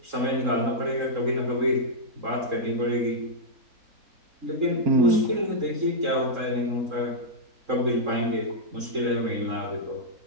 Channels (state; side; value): late; left; 3.8 ms